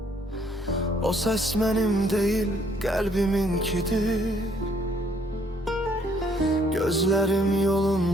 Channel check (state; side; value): normal; both; correlation 0.65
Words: O ses mənim deyil, qəlbiminkidir. Gözlerim